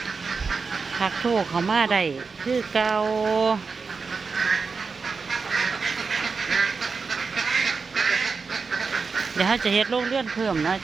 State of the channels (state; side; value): quieter; left; 4.8 dB